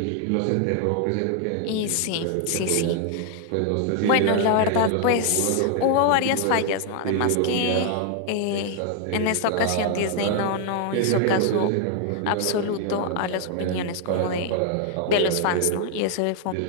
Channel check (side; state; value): both; different; correlation 0.00